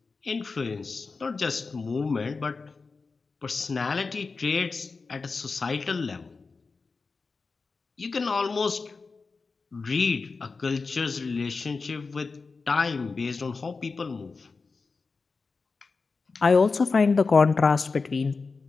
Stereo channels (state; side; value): quieter; right; 4.3 dB